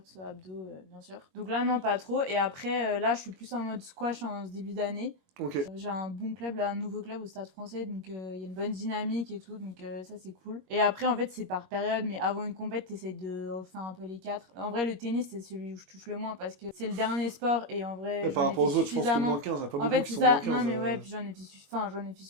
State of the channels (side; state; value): left; late; 21 ms